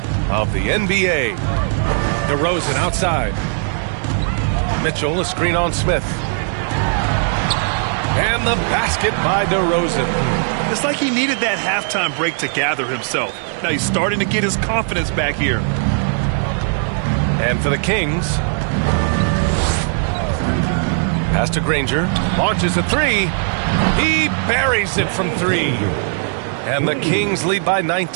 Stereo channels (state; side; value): silent; left; digital silence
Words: of the NBA. DeRozan outside. Mitchell, a screen on Smith. And the basket by DeRozan. It's like he needed that halftime break to gather himself. Now he's starting to get his confidence back here. And for the Kings, pass to Granger, launches a three. He buries it from three. And the Kings lead by